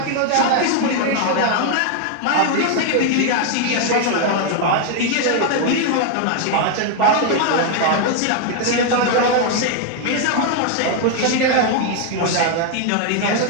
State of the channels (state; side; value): different; both; correlation 0.00